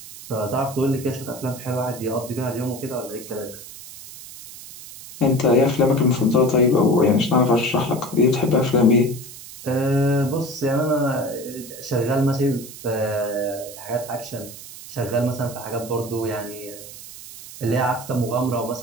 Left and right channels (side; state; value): right; noise; hiss, 15 dB below the sound